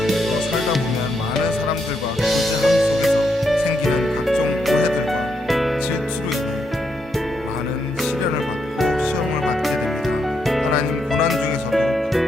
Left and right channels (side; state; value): both; normal; correlation 0.79